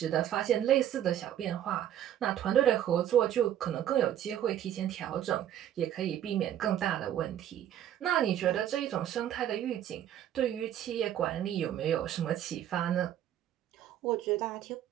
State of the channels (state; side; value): quieter; left; 11.0 dB